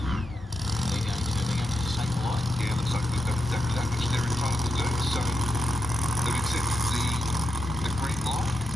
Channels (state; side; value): normal; both; correlation 0.85